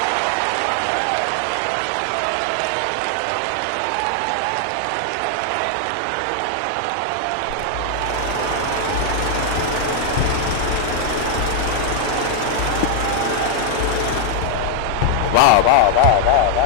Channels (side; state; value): both; different; correlation 0.00